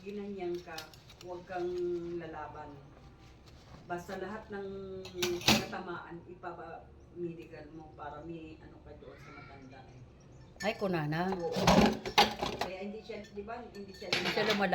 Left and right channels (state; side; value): identical; both; correlation 1.00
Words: ka, huwag kang lalaban. Basta lahat ng natamaan, ipapa-medical mo para may ano ka doon sa matanda. Ay, kunana. Oo. Kaya hindi siya, di ba, hindi siya Hindi siya